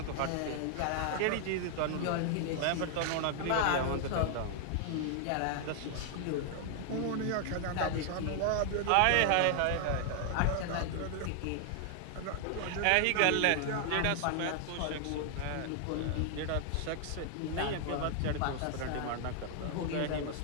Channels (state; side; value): different; both; correlation 0.00